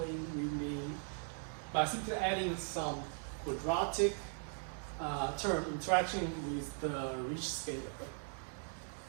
we mean by simply adding some quadratic term interaction with the rich scalar.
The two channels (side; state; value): left; silent; 52 dB below the other